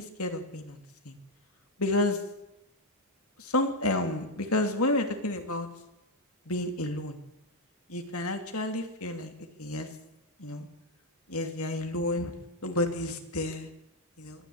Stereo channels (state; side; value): normal; both; correlation 0.03